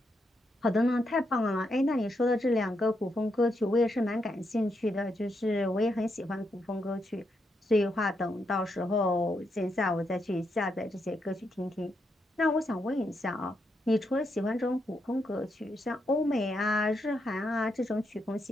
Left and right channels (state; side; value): normal; both; correlation 0.81